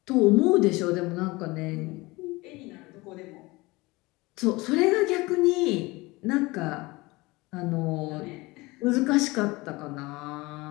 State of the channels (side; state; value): right; quieter; 22.4 dB